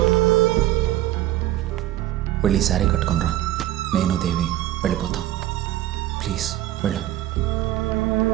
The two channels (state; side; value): quieter; left; 14.1 dB